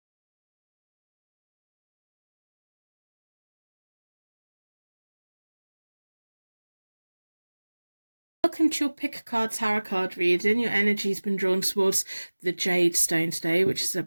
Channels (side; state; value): both; inverted; correlation -1.00